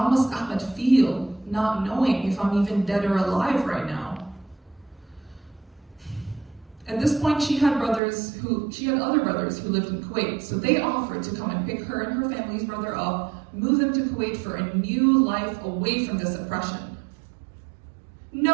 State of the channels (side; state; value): left; drops out; at 8.0 s